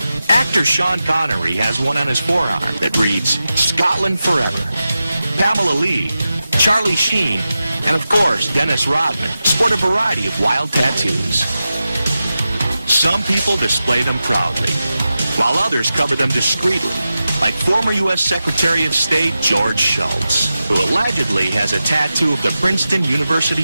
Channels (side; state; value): both; inverted; correlation -0.92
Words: Actor Sean Connery has one on his forearm that reads, "Scotland Forever." Pamela Lee, Charlie Sheen, and of course Dennis Rodman sport a variety of wild tattoos. Some people display them proudly, while others cover them discreetly, like former U.S. Secretary of State George Shultz, who allegedly has a tattoo of the Princeton University